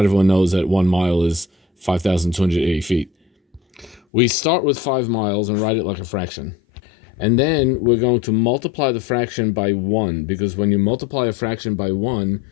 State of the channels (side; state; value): right; drops out; at 4.0 s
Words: everyone knows that 1 mile is 5,280 feet. We start with 5 miles and write it like a fraction. And then we're going to multiply the fraction by 1, because when you multiply a fraction by 1,